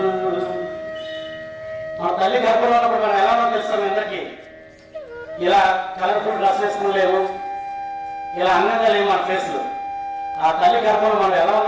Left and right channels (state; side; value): identical; both; correlation 1.00